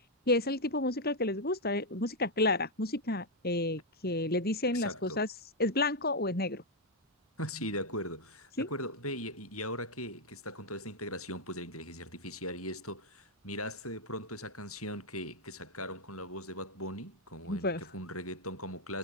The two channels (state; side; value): normal; both; correlation 0.00